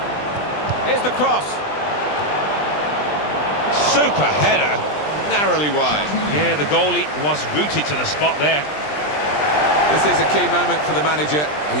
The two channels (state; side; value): late; right; 20 ms